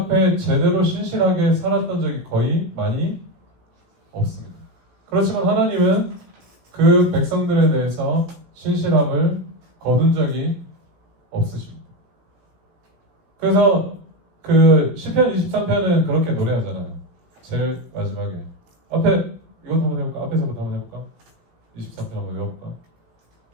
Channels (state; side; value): late; left; 17 ms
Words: 제대로 신실하게 살았던 적이 거의 많이 없습니다. 그렇지만 하나님은 그 백성들에 대해서 신실함을 거둔 적이 없으십니다. 그래서 시편 23편은 그렇게 노래하잖아요. 제일 마지막에 이것도 한번 해볼까? 앞에서부터 한번 해볼까? 23편 한번 외워볼까?